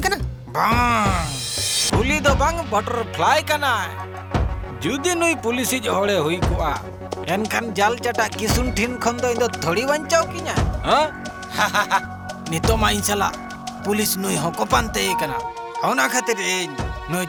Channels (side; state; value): both; identical; correlation 1.00